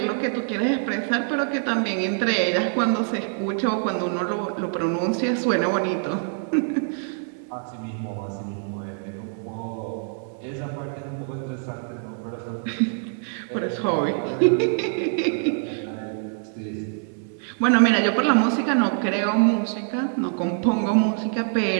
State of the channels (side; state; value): left; silent; 62 dB below the other